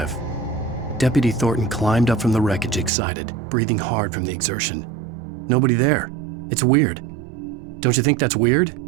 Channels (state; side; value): drops out; left; at 2.9 s